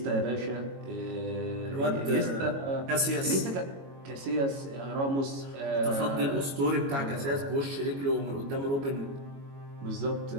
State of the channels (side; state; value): left; late; 22 ms